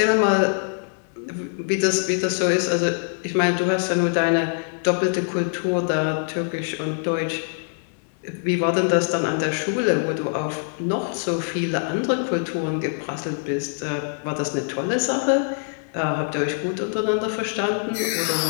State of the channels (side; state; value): right; silent; digital silence